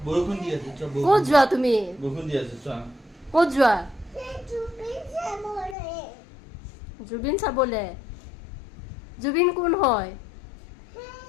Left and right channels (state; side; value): drops out; right; at 5.8 s